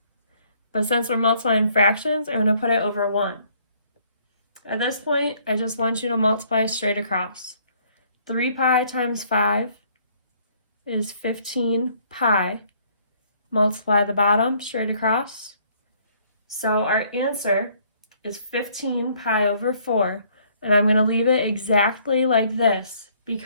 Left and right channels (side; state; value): both; inverted; correlation -0.63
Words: but since we're multiplying fractions, I'm going to put it over 1. At this point, I just want you to multiply straight across. 3 pi times 5 is 15 pi. Multiply the bottom straight across. So our answer is 15 pi over 4, and I'm going to leave it exactly like this